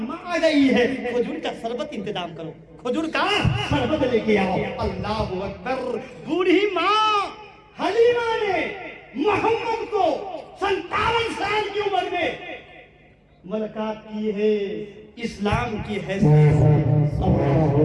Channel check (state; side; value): identical; both; correlation 1.00